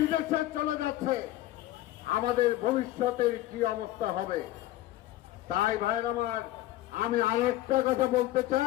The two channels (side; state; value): right; quieter; 15.4 dB